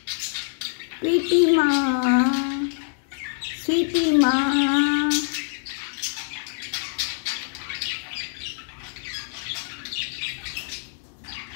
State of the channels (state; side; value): silent; right; digital silence